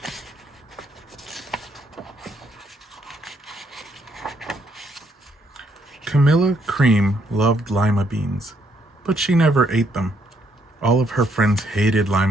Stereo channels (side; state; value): both; normal; correlation 0.72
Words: Camilla Cream loved lima beans, but she never ate them. All of her friends hated